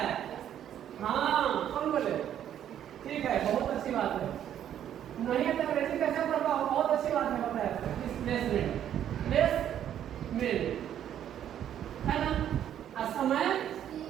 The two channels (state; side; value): quieter; left; 10.3 dB